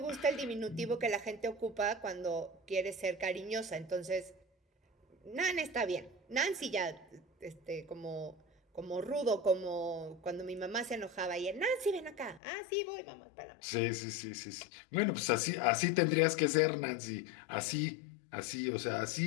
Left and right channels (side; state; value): right; drops out; at 12.4 s